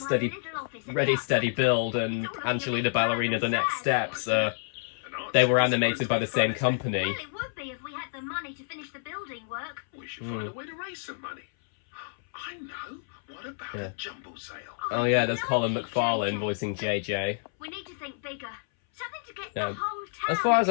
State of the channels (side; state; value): right; silent; 59 dB below the other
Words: Build, and Angelina Ballerina, The Next Steps, they were animated by the same company. Well, it would be if we had the money to finish the building work. We should find a way to raise some money. I know. What about a jumble sale? Oh yeah, there's Colin McFarlane voicing JJ. We need to think bigger. Something to get Yeah. the whole town. As far as